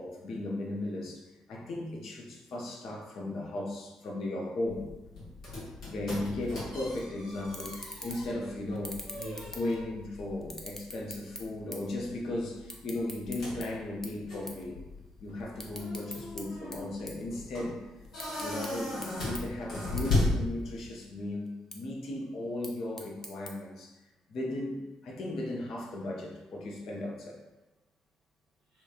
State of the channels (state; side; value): normal; both; correlation 0.78